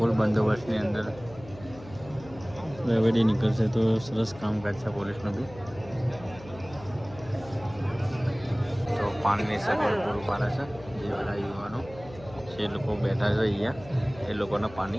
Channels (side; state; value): left; noise; hum, 18 dB below the sound